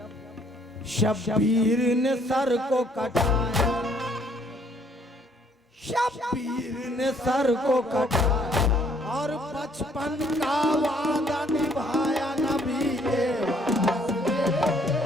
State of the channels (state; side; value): normal; both; correlation 0.64